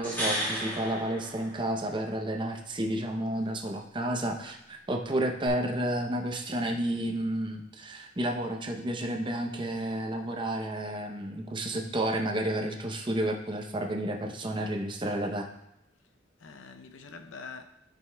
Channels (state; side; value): normal; both; correlation 0.54